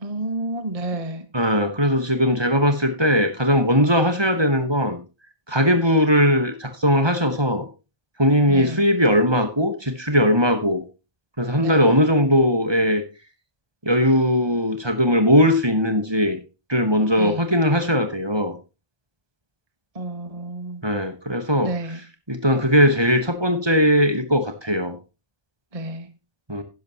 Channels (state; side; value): late; left; 1.2 ms